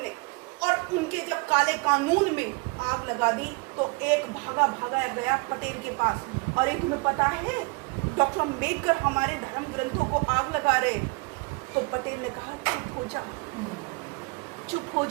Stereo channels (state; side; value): quieter; left; 28.5 dB